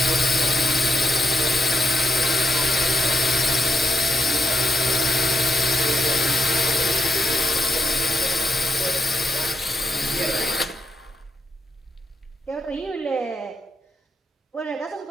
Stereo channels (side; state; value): both; normal; correlation 0.81